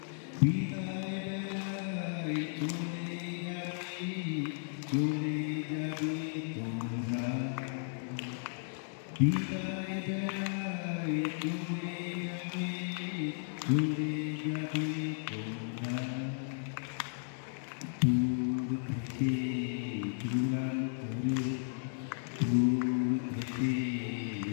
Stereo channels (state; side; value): silent; right; digital silence